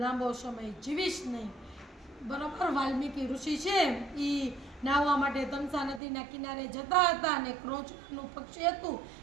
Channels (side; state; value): left; drops out; at 6.0 s